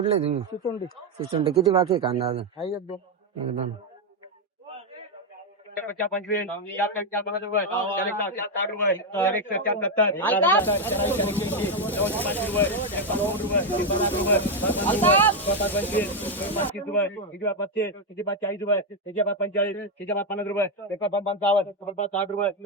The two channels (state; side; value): normal; both; correlation 0.05